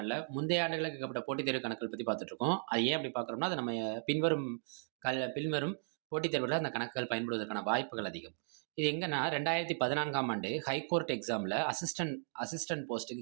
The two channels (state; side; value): silent; left; digital silence